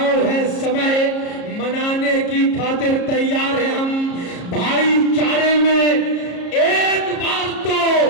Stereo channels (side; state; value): right; late; 33 ms